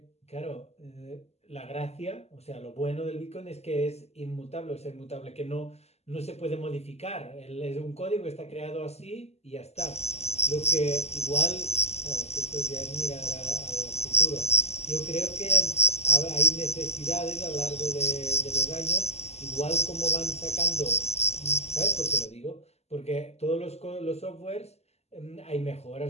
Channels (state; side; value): late; right; 0.30 ms